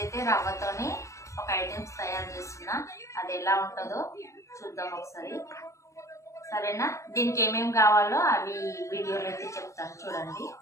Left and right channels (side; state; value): right; late; 0.15 ms